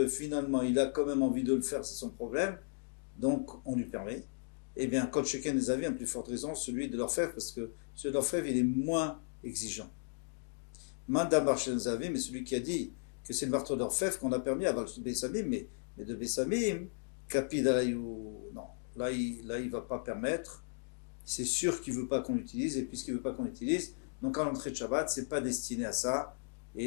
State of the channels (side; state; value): right; silent; digital silence